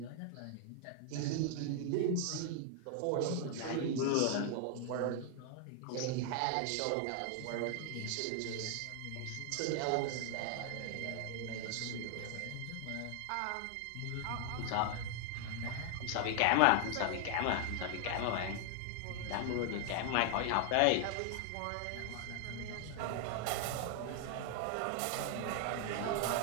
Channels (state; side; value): different; both; correlation 0.00